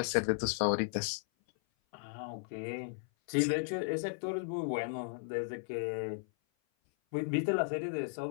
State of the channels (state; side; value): silent; right; 54 dB below the other